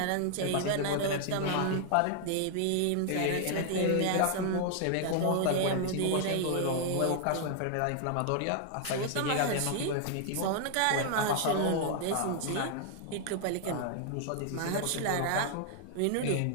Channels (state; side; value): different; both; correlation 0.00